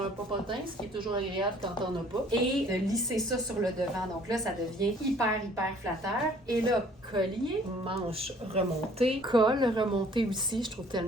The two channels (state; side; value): normal; both; correlation 0.56